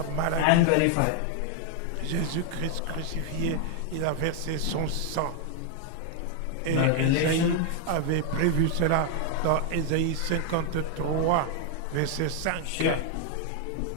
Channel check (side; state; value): both; different; correlation 0.00